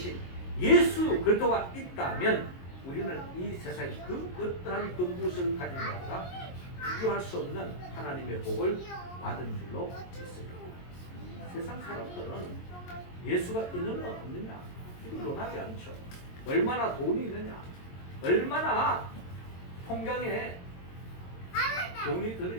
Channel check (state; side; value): late; right; 22 ms